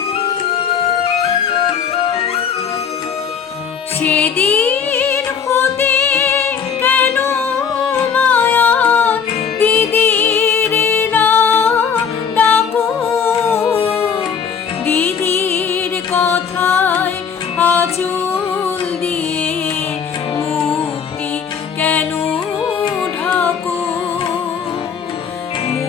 সেদিন হতে কেন মায়া দিদির না ডাকো, দিদির কথায় আঁচল দিয়ে মুক্তি কেন ঢাকো,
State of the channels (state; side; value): quieter; right; 6.9 dB